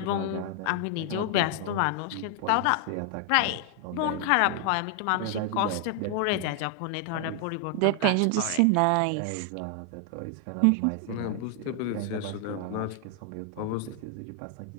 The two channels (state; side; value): different; both; correlation 0.00